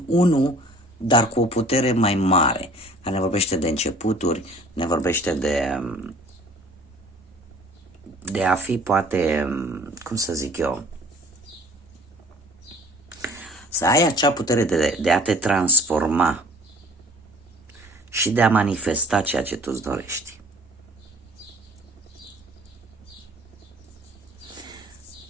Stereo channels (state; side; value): normal; both; correlation 0.51